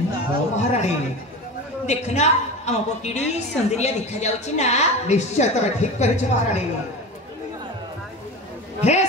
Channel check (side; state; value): both; normal; correlation 0.29